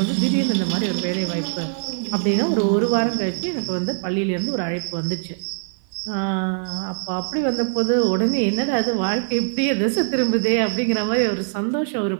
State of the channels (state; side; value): silent; left; 55 dB below the other